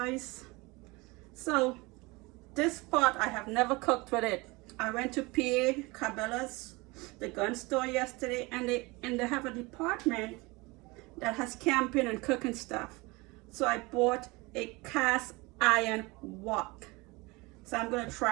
So this pot, I have never cooked with it. I went to PA Cabela's, the gun store yesterday, and they have a department that has camping and cooking stuff. So I bought a cast iron wok. So I'm gonna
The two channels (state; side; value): quieter; left; 24.4 dB